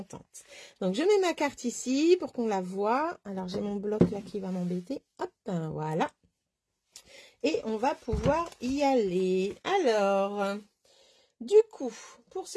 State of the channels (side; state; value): both; identical; correlation 1.00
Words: Donc je mets ma carte ici pour qu'on la voie. Alors j'ai mon bloc là qui va m'embêter. Hop, voilà. Et on va pouvoir y aller. Alors... Du coup, pour